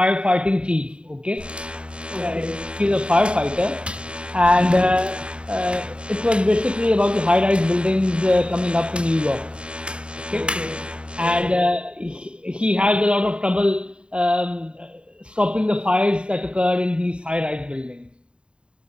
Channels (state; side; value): late; left; 0.054 ms